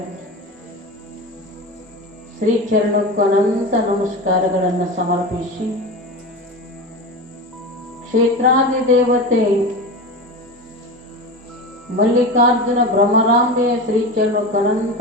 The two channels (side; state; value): both; normal; correlation 0.26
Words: ಶ್ರೀಚರಣಕ್ಕೂ ಅನಂತ ನಮಸ್ಕಾರಗಳನ್ನು ಸಮರ್ಪಿಸಿ ಕ್ಷೇತ್ರಾದಿ ದೇವತೆ ಮಲ್ಲಿಕಾರ್ಜುನ ಭ್ರಮರಾಂಬೆಯ ಶ್ರೀಚರಣಕ್ಕೂ ಅನಂತ